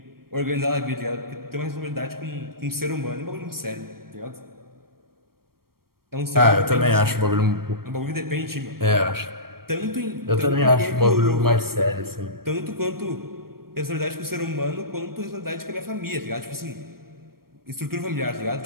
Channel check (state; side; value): late; left; 0.94 ms